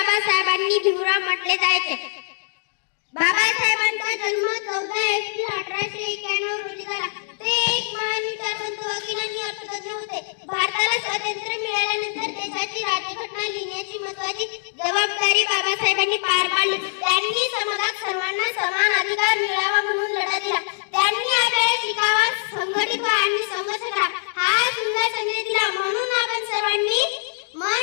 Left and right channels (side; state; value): right; silent; digital silence